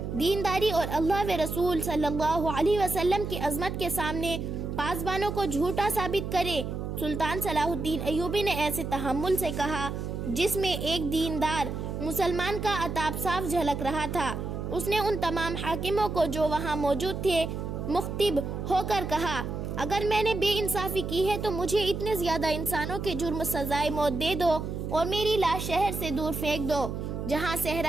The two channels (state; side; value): noise; right; hum, 5 dB below the sound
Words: دینداری اور اللہ و رسول صلی اللہ علیہ وسلم کی عظمت کے سامنے پاسبانوں کو جھوٹا ثابت کرے؟ سلطان صلاح الدین ایوبی نے ایسے تحمل سے کہا جس میں ایک دیندار مسلمان کا عتاب صاف جھلک رہا تھا۔ اس نے ان تمام حاکموں کو جو وہاں موجود تھے مخاطب ہو کر کہا، اگر میں نے بے انصافی کی ہے تو مجھے اتنے زیادہ انسانوں کے جرم سزائے موت دے دو اور میری لاش شہر سے دور پھینک دو جہاں